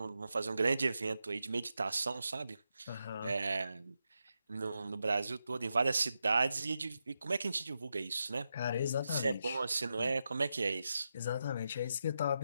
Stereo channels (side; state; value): both; inverted; correlation -0.87